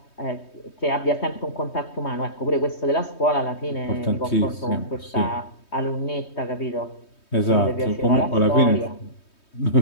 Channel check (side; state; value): right; late; 3.2 ms